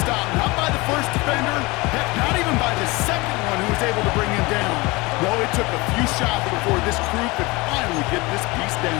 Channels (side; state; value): right; quieter; 23.7 dB